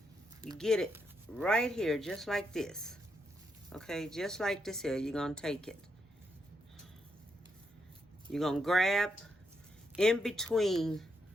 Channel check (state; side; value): normal; both; correlation 0.80